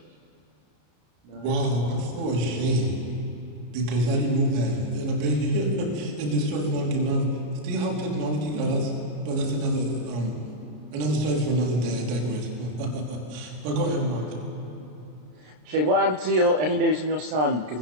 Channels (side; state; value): left; late; 33 ms